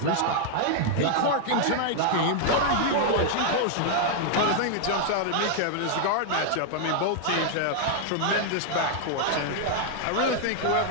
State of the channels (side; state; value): both; different; correlation 0.00